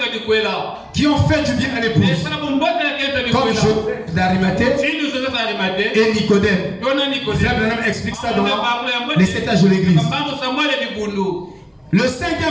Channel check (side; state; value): both; identical; correlation 1.00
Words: qui ont fait du bien à l'épouse, comme Joseph d'Arimathée et Nicodème. Frère Branham explique ça dans les 7 âges de l'église. Le